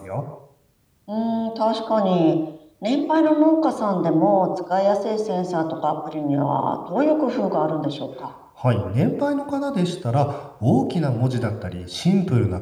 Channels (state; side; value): identical; both; correlation 1.00